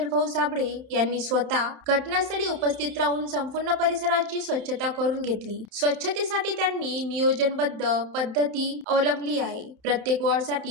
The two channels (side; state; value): left; late; 31 ms